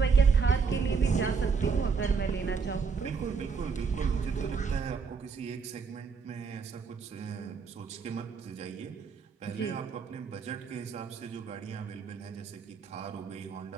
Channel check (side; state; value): left; quieter; 5.4 dB